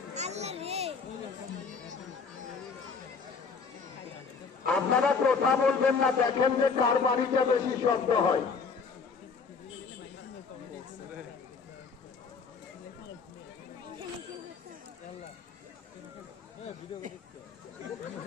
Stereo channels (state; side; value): quieter; right; 5.2 dB